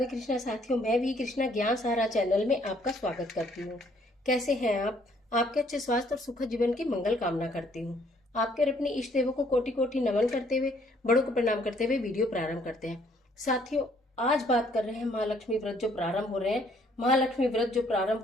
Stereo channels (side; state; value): both; normal; correlation 0.64